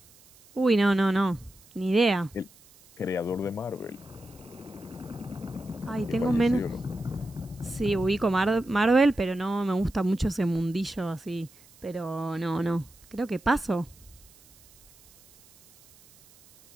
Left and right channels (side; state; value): right; noise; hiss, 26 dB below the sound